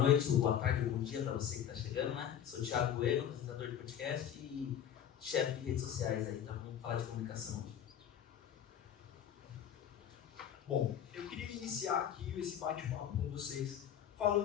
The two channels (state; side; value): quieter; right; 9.6 dB